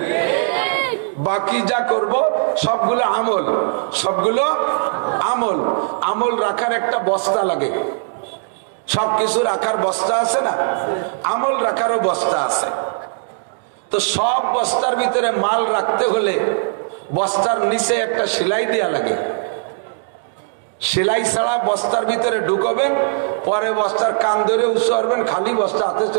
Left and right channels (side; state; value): left; silent; digital silence